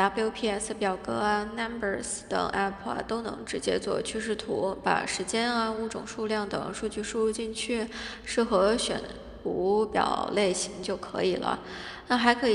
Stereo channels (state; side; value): identical; both; correlation 1.00